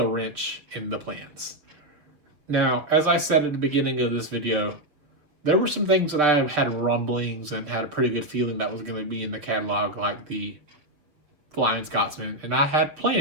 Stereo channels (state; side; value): late; left; 6.9 ms